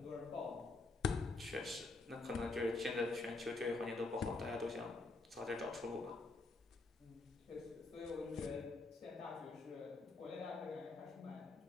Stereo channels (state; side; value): quieter; right; 3.5 dB